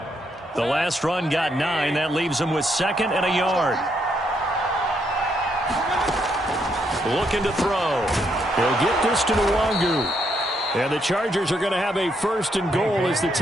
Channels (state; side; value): normal; both; correlation 0.76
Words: The last run got 9. That leaves him with 2nd and a yard. Looking to throw. He'll get this to Nwangu. And the Chargers are going to have a 1st and goal as the